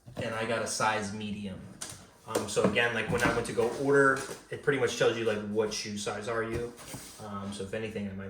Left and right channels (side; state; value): both; identical; correlation 1.00